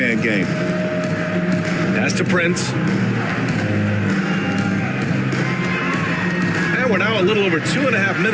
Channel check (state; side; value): identical; both; correlation 1.00